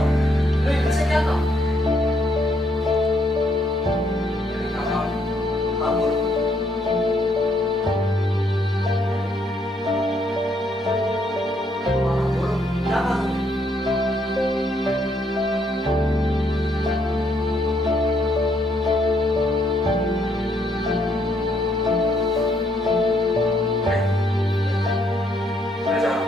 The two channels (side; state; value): both; normal; correlation 0.72